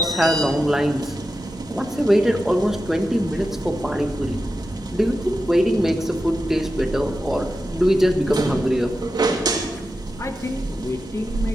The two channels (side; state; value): both; normal; correlation 0.91